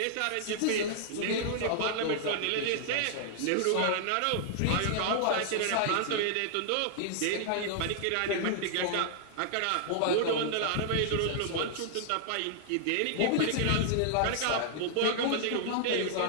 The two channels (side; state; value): both; different; correlation -0.01